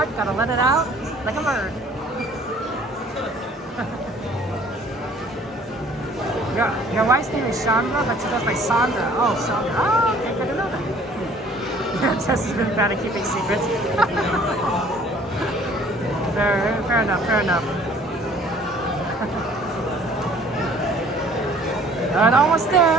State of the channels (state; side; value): normal; both; correlation 0.54